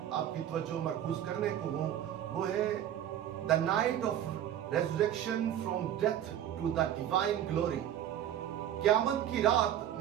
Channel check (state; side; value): quieter; left; 10.9 dB